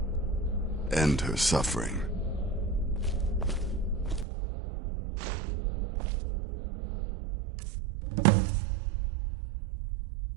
End her suffering.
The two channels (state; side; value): drops out; left; at 4.2 s